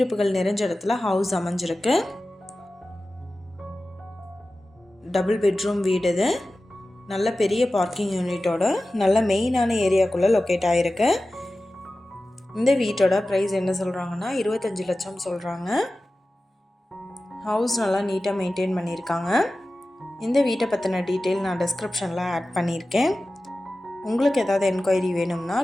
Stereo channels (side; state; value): both; normal; correlation 0.95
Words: நிறைஞ்ச இடத்துல ஹவுஸ் அமைஞ்சிருக்கு. டபுள் பெட்ரூம் வீடு. இது நல்ல பெரிய பார்க்கிங் யூனிட்டோட நல்ல மெயினான ஏரியாக்குள்ளே லொக்கேட் ஆகிருக்கு. இந்த வீட்டோட ப்ரைஸ் என்ன சொல்கிறாங்கன்னா 25 லட்சம் சொல்கிறாங்க. ஹவுஸ் நல்லா நீட்டாக மெயின்டைன் பண்ணியிருக்காங்க. இந்த வீட்டை பற்றின டீட்டெயில் நான் டிஸ்கிரிப்ஷனில் ஆட் பண்ணியிருக்கேன். உங்களுக்கு ஏதாவது என்கொயரி வேணும்னா